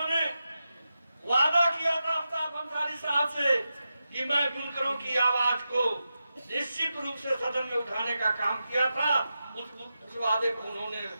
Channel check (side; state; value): both; inverted; correlation -0.90